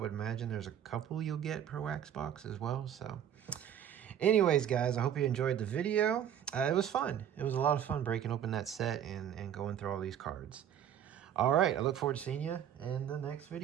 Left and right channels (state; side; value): quieter; left; 9.6 dB